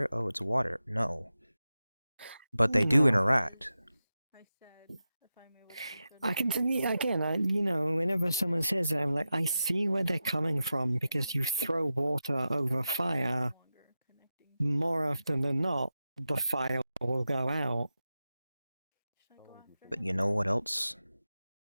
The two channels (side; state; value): both; inverted; correlation -0.92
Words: Oh, it's water. No. But they do interact. I can see, again, whenever someone says that, I'm like, I see where they're coming from, because you throw water over fire, more often than not, the fire will go out. But you know what else?